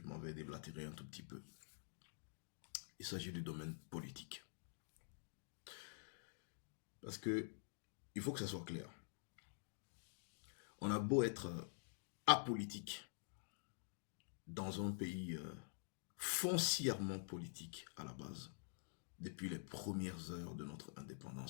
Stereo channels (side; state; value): right; silent; digital silence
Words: m'en vais déblatérer un tout petit peu. Il s'agit du domaine politique. Parce que il faut que ça soit clair. On a beau être apolitique dans un pays foncièrement politique à la base, depuis les premières heures de notre